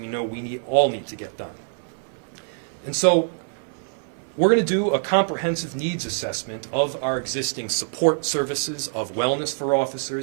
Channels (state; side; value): silent; left; 60 dB below the other